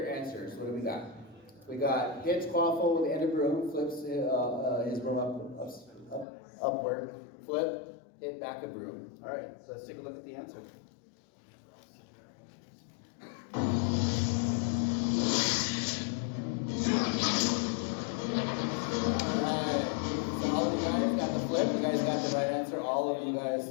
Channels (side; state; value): right; drops out; at 6.2 s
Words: answers. What do we got? We got hits Quaffle with the end of broom, flips his broom upward, flip, hit back of broom. All right, so let's take a look at the answer. All